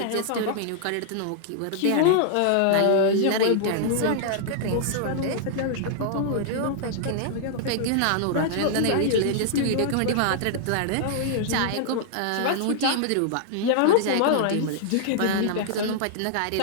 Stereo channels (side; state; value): both; different; correlation -0.01